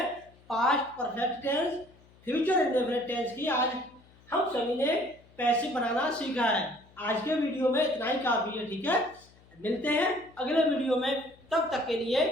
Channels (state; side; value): noise; left; hum, 27 dB below the sound